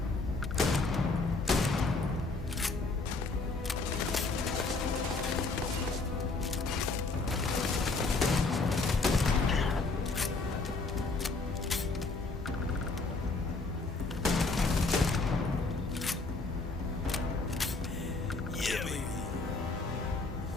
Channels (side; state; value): right; quieter; 3.7 dB